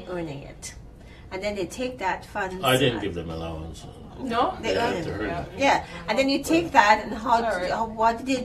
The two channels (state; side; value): identical; both; correlation 1.00